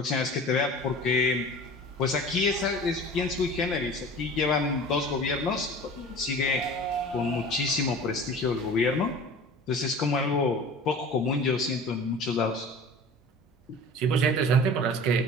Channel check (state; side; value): normal; both; correlation 0.40